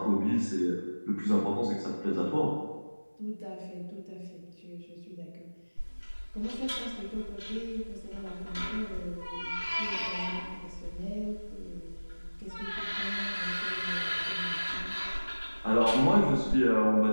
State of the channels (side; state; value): both; inverted; correlation -1.00